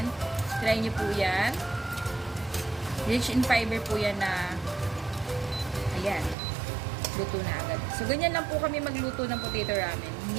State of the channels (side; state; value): left; drops out; at 6.4 s